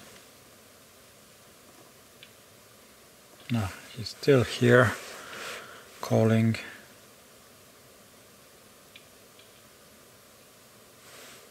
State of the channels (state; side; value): identical; both; correlation 1.00